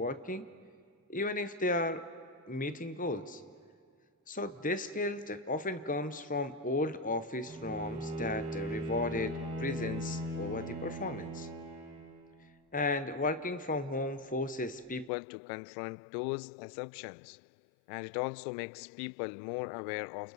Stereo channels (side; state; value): right; drops out; at 15.1 s